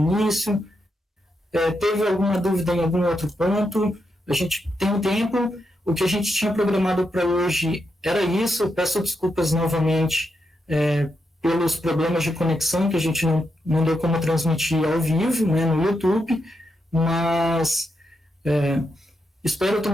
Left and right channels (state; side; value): normal; both; correlation 0.84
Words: teve alguma dúvida em algum outro ponto, a gente tem um tempo. O que a gente tinha programado para hoje era isso. Eu peço desculpas novamente pelos problemas de conexão, que a gente não deu como transmitir ao vivo, né, no YouTube, mas espero